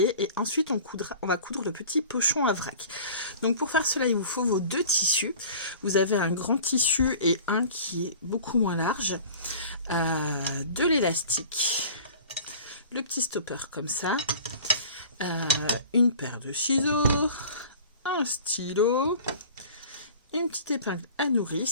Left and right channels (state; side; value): inverted; both; correlation -0.43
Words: et ensuite on va coudre le petit pochon à vrac. Donc pour faire cela, il vous faut vos deux tissus. Vous avez un grand tissu et un qui est beaucoup moins large, de l'élastique, le petit stopper comme ça, une paire de ciseaux, un stylo, une petite épingle à